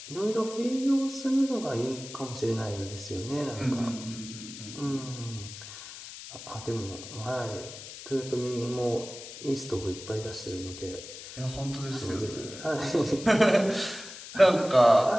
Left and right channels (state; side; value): noise; left; hiss, 13 dB below the sound